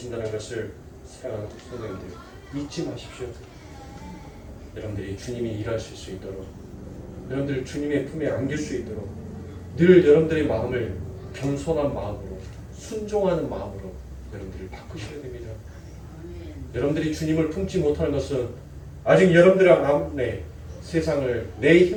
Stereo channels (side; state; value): both; identical; correlation 1.00